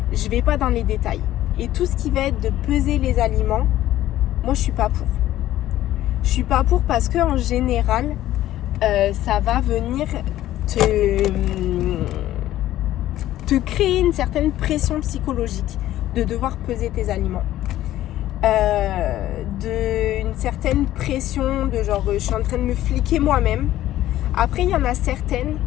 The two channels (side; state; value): right; quieter; 13.8 dB